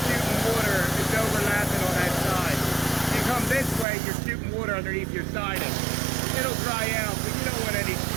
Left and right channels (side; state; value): left; drops out; at 3.9 s